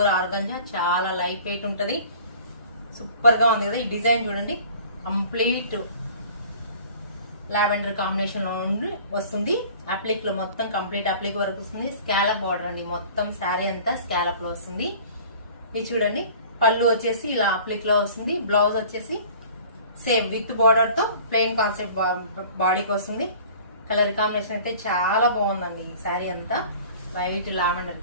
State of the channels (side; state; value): both; inverted; correlation -0.46